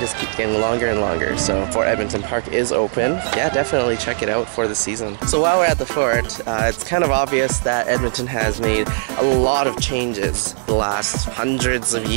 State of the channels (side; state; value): left; silent; digital silence